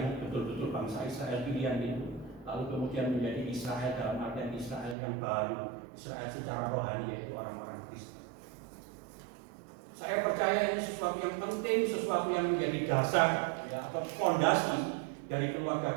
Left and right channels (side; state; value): left; drops out; at 5.0 s